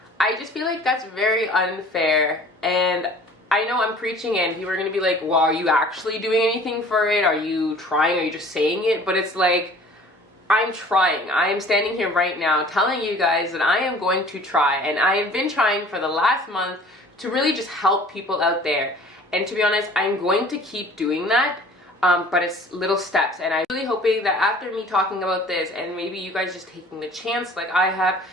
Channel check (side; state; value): both; normal; correlation 0.49